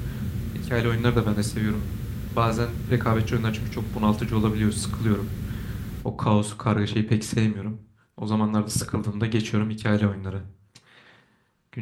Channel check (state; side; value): identical; both; correlation 1.00